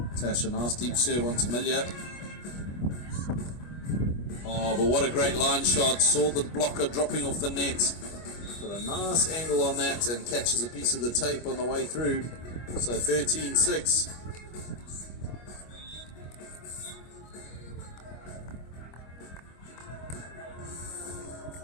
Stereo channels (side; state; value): right; late; 25 ms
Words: Natasha, nice deep serve onto Milja. Oh, but what a great line shot. Saw the blocker dropping off the net. Got a nice angle on that and catches a piece of the tape on the way through. So 13-6.